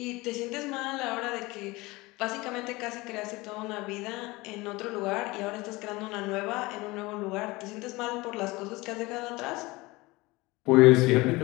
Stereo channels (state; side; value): quieter; right; 22.1 dB